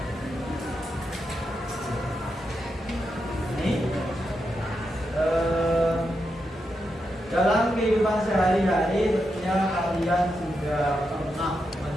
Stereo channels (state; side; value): normal; both; correlation 0.85